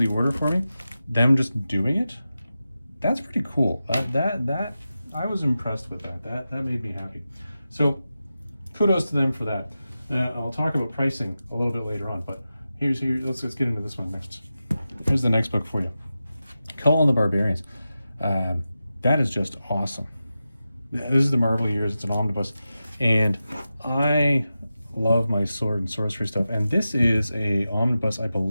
order for me? Them just doing it, that's pretty cool. That I was impressed with that. That made me happy. So kudos to them for that. I'll talk about pricing a little bit later on, but let's get into this one next. Here's the next book for you. Conan the Barbarians. That is just awesome. This is the Marvel years. It's an omnibus, and I love my sword and sorcery stuff. And this is a omnibus, I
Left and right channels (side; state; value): both; inverted; correlation -0.92